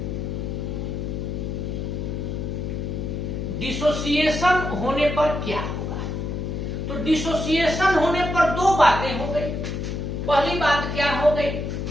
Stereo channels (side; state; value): left; noise; hum, 3 dB below the sound